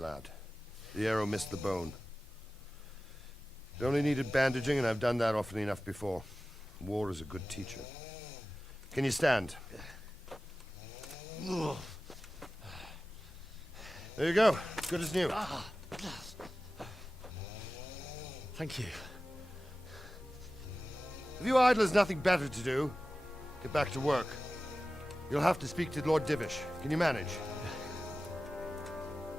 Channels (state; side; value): normal; both; correlation 0.95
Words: The arrow missed the bone. It only needed bandaging, and I've done that often enough before. War is a good teacher. Can you stand? There you go. Good as new. Thank you. If you idlers nothing better to do, get back to work. You'll have to speak to Lord Divish. Can you manage?